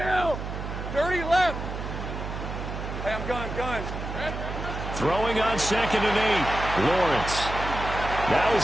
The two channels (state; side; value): noise; right; hum, 6 dB below the sound